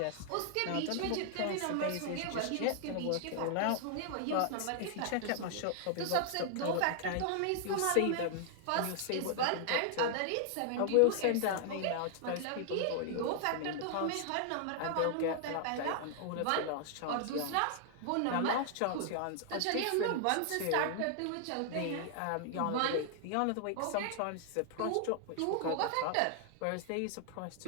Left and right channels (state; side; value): different; both; correlation 0.00